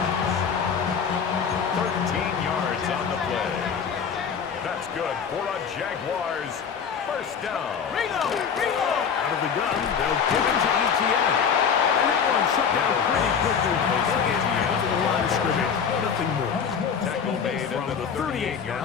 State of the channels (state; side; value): quieter; right; 6.8 dB